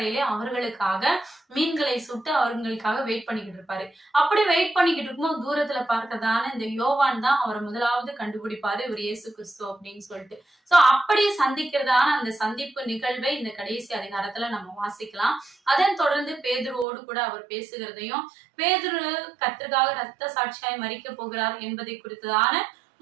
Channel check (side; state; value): left; drops out; at 16.9 s